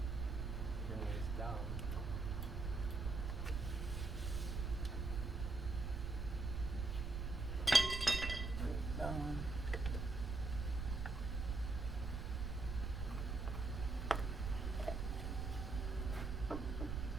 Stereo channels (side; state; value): right; noise; rumble, 2 dB below the sound